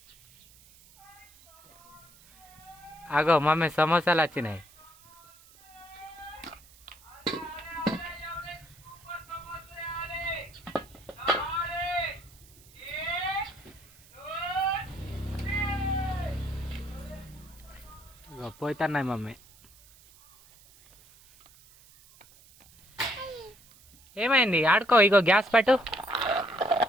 అగో మమ్మీ సమోసాలు వచ్చినాయి. ఇగో పోతున్నాయి మమ్మీ. ఏమైంది? ఆడుకో. ఇగో గ్యాస్ పెట్టు.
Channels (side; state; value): right; noise; hiss, 25 dB below the sound